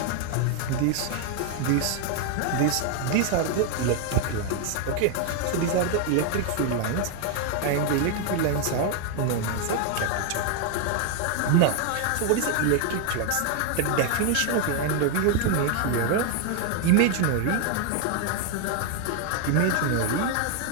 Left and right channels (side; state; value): both; different; correlation 0.00